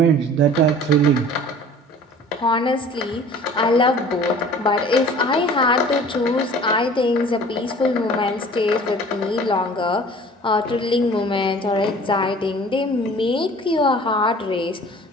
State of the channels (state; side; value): normal; both; correlation 0.46